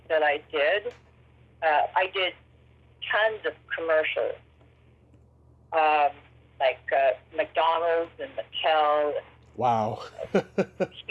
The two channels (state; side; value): identical; both; correlation 1.00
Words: that I did. I did tons of commercials, like McDonald's and Mattel. Wow.